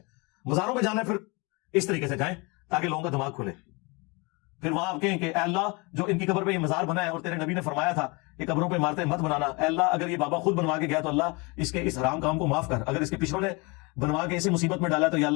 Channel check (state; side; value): quieter; right; 28.2 dB